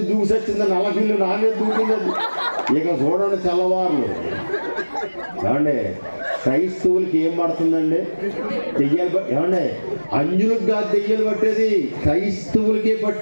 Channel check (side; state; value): both; inverted; correlation -1.00